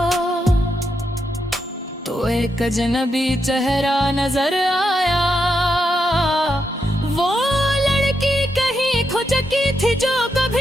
तो एक अजनबी चेहरा नजर आया। वो लड़की कहीं खो चुकी थी जो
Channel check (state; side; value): normal; both; correlation 0.83